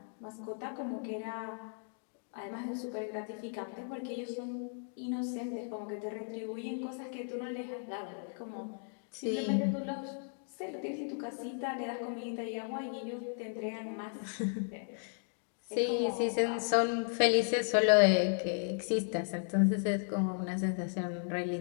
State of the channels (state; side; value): silent; right; 54 dB below the other